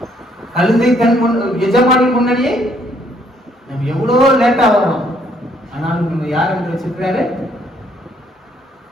கழுதை தன் எஜமானின் முன்னாடியே நம்ம எவ்வளவு லேட்டா வரோம், ஆனாலும் நம்ம யார் என்று வச்சிருக்கிறாரு?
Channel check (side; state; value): both; normal; correlation 0.67